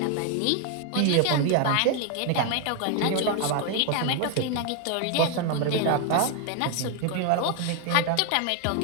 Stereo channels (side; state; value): both; different; correlation 0.00